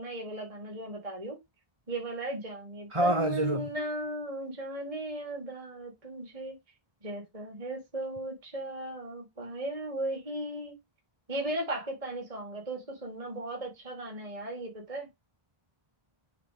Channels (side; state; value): left; late; 1.4 ms